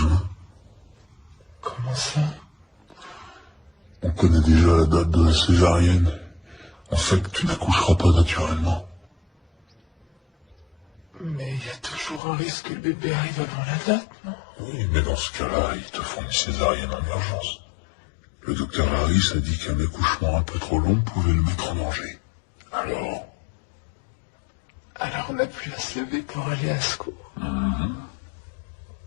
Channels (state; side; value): drops out; right; at 12.2 s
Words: Comment ça? On connaît déjà la date de la césarienne. En fait, tu n'accoucheras pas naturellement. Mais il y a toujours un risque que le bébé arrive avant la date, non? Oui, mais dans ce cas-là, ils te font une césarienne en urgence. Le docteur Harris a dit qu'un accouchement un peu trop long pouvait le mettre en danger. Alors on n'a plus à se lever pour aller à secours.